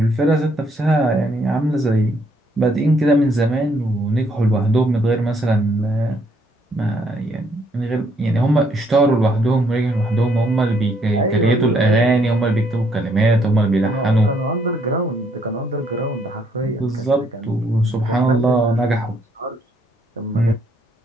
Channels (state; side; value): normal; both; correlation 0.69